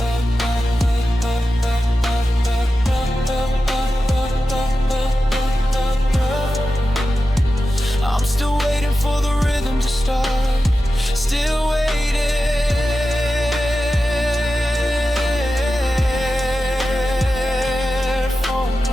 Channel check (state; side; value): normal; both; correlation 0.92